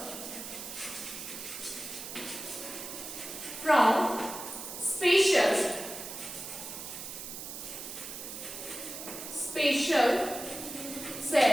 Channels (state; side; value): noise; right; hiss, 9 dB below the sound